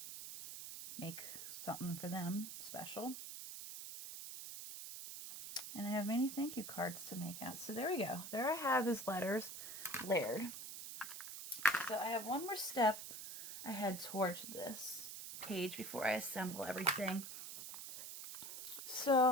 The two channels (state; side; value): noise; right; hiss, 9 dB below the sound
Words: make something for them special. And I have many thank you cards to make out. So there we go. There I have his letters layered. So I have one more step I head towards this page before I assemble everything.